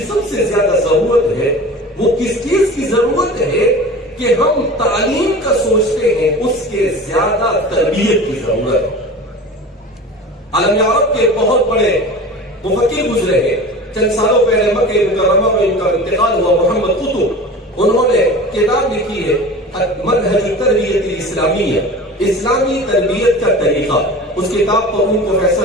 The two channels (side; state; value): both; normal; correlation 0.36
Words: سب سے زیادہ ضرورت ہے، وہ کس چیز کی ضرورت ہے کہ ہم تعلیم کا سوچتے ہیں، اس کے زیادہ تربیت کی ضرورت ہے. عالم عرب کے بہت بڑے مفکر گزرے ہیں. چند سالوں پہلے مکہ مکرمہ میں ان کا انتقال ہوا. محمد قطب، انہوں نے کتاب لکھی ہے منہج التربیت الاسلامیہ، اسلامی تربیت کا طریقہ. اس کتاب پر ان کو